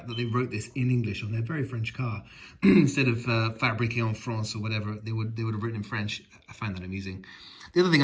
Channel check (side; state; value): both; identical; correlation 1.00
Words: that they wrote this in English on their very French car, instead of fabriqué en France or whatever, they would have written in French. I find that amusing. The other thing